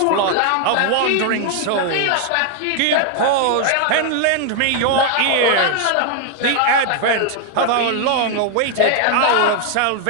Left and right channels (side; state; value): both; different; correlation 0.00